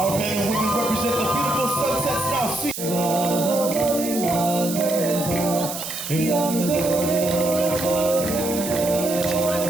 men and women represent the beautiful sunsets now seen.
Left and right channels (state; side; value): noise; right; hiss, 7 dB below the sound